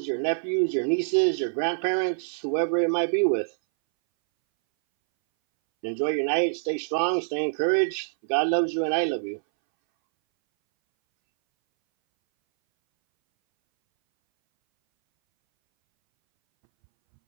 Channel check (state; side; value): silent; left; 62 dB below the other